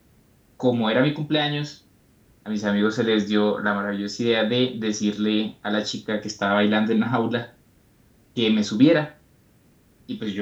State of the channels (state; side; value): identical; both; correlation 1.00